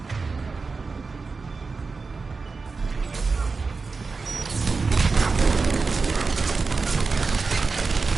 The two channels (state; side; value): quieter; left; 4.4 dB